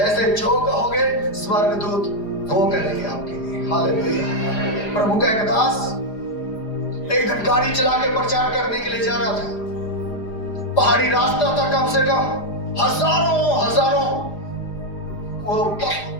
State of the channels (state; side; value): late; right; 4.9 ms